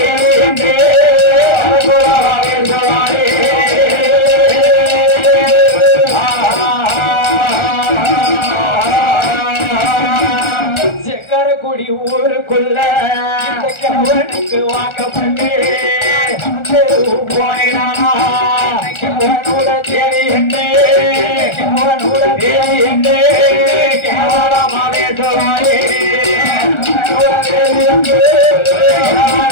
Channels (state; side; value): late; right; 1.4 ms